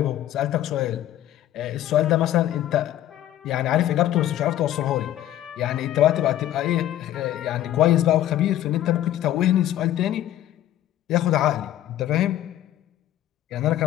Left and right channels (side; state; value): right; quieter; 12.8 dB